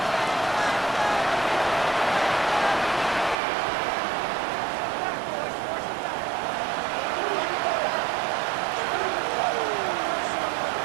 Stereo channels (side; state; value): left; drops out; at 3.4 s